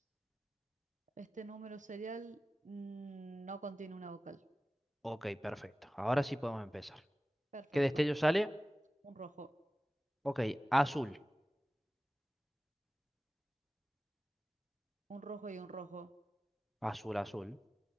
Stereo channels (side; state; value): both; normal; correlation 0.96